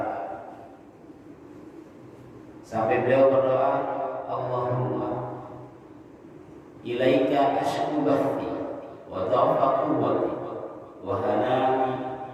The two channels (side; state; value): both; identical; correlation 1.00